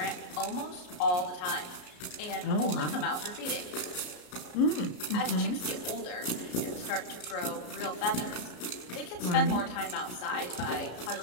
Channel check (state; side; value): late; right; 33 ms